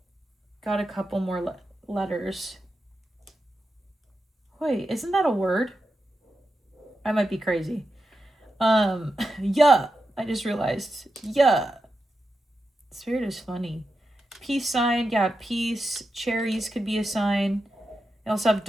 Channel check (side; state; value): both; normal; correlation 0.89